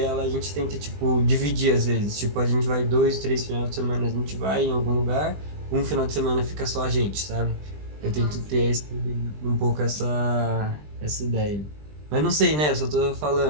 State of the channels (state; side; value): late; left; 20 ms